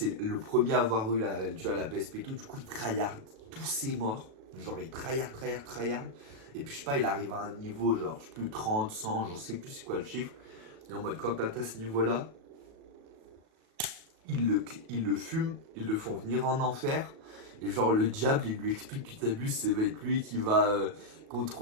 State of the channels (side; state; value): left; late; 37 ms